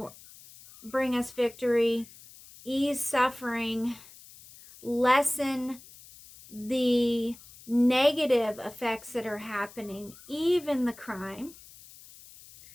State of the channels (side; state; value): left; noise; hiss, 21 dB below the sound